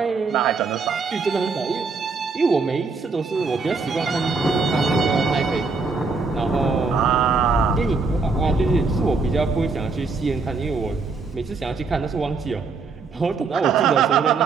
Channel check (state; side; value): quieter; left; 4.4 dB